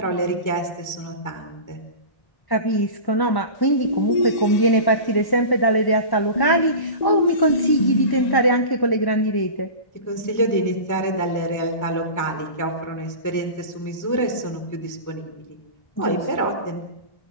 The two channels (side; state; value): right; late; 1.1 ms